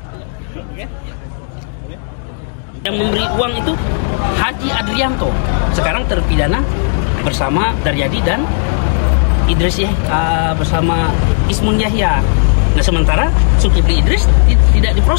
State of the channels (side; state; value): right; silent; digital silence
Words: Yang memberi uang itu Haji Adrianto, sekarang terpidana bersama Daryadi dan Idris bersama Ismun Yahya. Nah, sementara Zulkifli Idris tidak